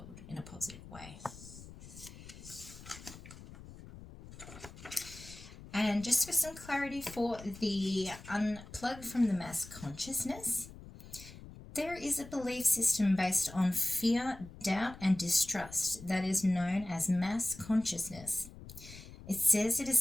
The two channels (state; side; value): noise; left; rumble, 16 dB below the sound